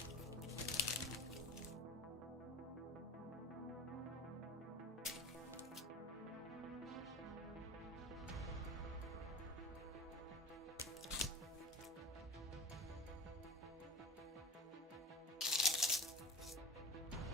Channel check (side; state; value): both; normal; correlation 0.34